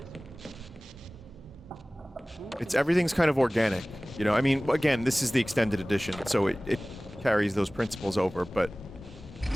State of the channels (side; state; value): both; normal; correlation 0.98